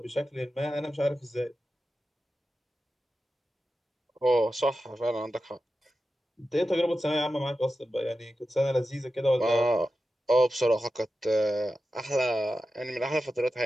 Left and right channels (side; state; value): both; normal; correlation 0.92